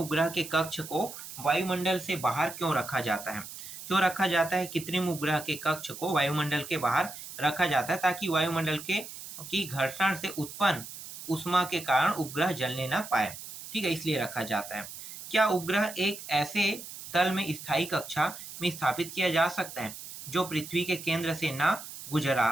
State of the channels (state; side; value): noise; right; hiss, 12 dB below the sound